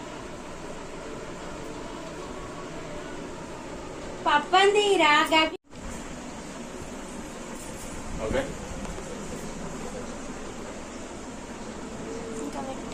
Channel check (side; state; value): both; identical; correlation 1.00